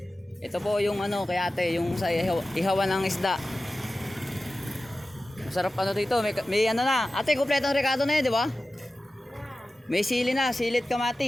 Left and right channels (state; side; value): normal; both; correlation 0.95